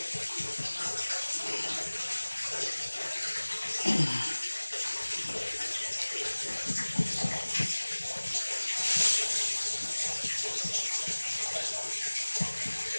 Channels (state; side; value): inverted; both; correlation -1.00